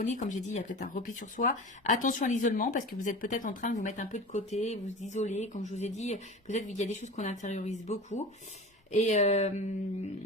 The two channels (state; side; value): normal; both; correlation 0.33